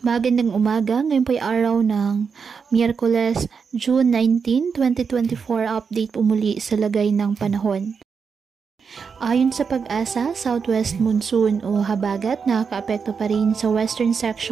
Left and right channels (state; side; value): quieter; left; 5.9 dB